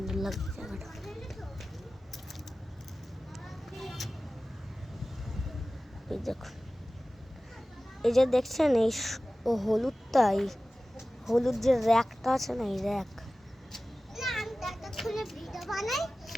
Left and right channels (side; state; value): both; normal; correlation 0.96